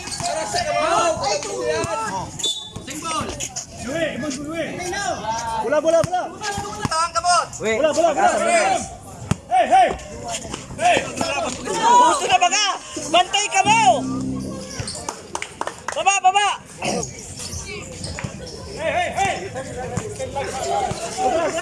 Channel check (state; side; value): identical; both; correlation 1.00